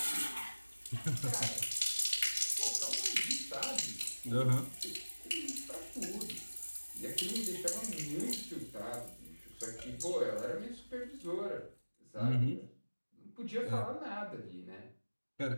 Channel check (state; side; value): inverted; both; correlation -1.00